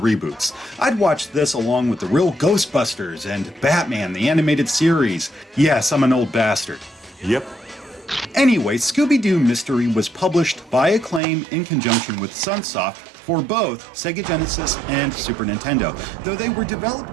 I'd watched this along with the real Ghostbusters and Batman, the animated series. Yes, I'm an old bastard. Yep. Anyway, Scooby-Doo Mystery was published by Acclaim in conjunction with Sunsoft for both Sega Genesis and Super Nintendo, though they were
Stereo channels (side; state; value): left; drops out; at 11.2 s